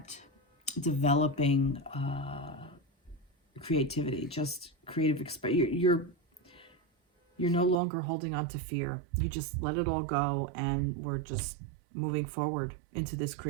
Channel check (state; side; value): drops out; left; at 7.8 s